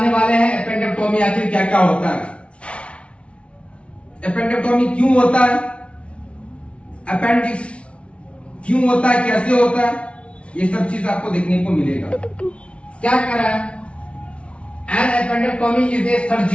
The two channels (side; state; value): right; late; 0.060 ms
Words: वाले हैं एपेंडेक्टोमी आखिर क्या क्या होता है, एपेंडेक्टोमी क्यों होता है, अपेंडिक्स क्यों होता है, कैसे होता है, ये सब चीज आपको देखने को मिलेगा। क्या करा है? An appendectomy is a